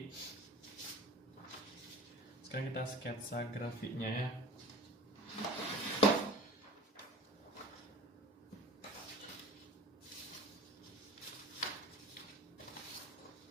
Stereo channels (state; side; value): normal; both; correlation 0.39